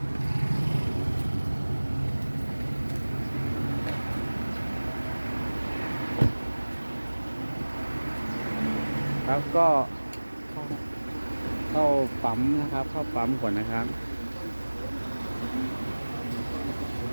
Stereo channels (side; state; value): both; inverted; correlation -1.00